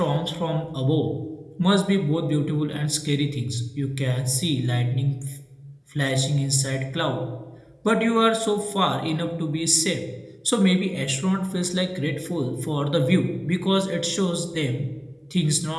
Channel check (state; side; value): identical; both; correlation 1.00